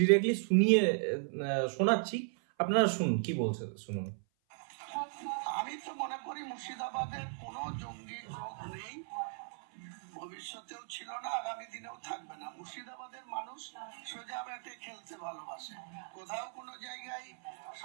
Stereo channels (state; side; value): silent; left; 53 dB below the other